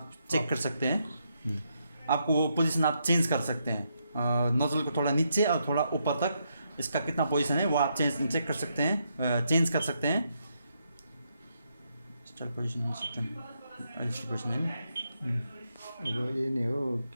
चेक कर सकते हैं। आपको वो पोजीशन आप चेंज कर सकते हैं। नोज़ल को थोड़ा नीचे और थोड़ा ऊपर तक इसका कितना पोजीशन है वो आप चेक कर सकते हैं, चेंज कर सकते हैं। स्टार्ट पोजीशन पोजीशन है। अब यही नै हो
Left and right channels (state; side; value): inverted; both; correlation -0.79